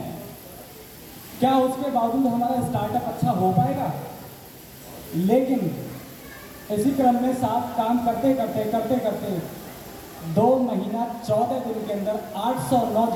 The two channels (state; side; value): identical; both; correlation 1.00